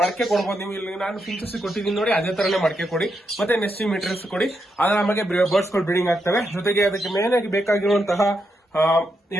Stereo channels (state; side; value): normal; both; correlation 0.82